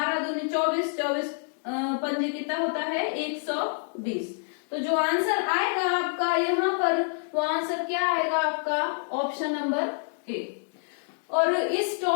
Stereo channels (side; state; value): right; silent; digital silence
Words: दूने 24, 24 पंजे कितना होता है? 120। तो जो आंसर आएगा आपका यहाँ पर, वो आंसर क्या आएगा आपका? Option number A. और इस